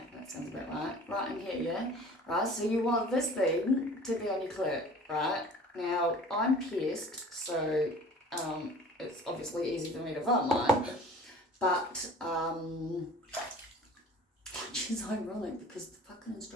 that sounds about right. Right in here, yeah? Right, so you want this thing to be on your clit, right? Now, I'm pierced, so it's obviously easy for me to find mine, but which is ironic because the fucking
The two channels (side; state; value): both; normal; correlation 0.46